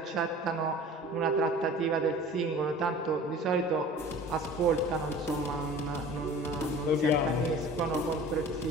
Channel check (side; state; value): both; normal; correlation 0.43